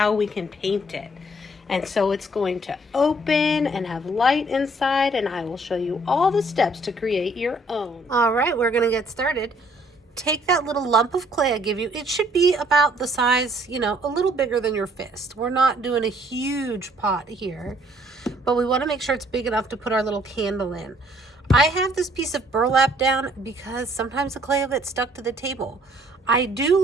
we can paint it. And so it's going to open and have light inside, and I will show you all the steps to create your own. All right, we're going to get started. Take that little lump of clay I give you. It should be about the size, a little bigger than your fist. We're not doing a huge pot here, but we want to make sure it's big enough to put our little candle in. I have this piece of burlap down because sometimes the clay will get stuck to the table. I do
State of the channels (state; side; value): normal; both; correlation 0.63